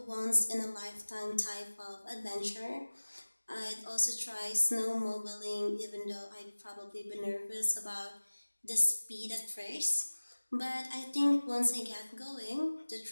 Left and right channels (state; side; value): inverted; both; correlation -1.00